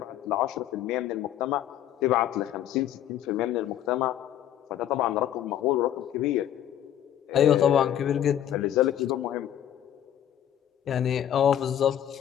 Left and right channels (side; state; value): right; quieter; 11.0 dB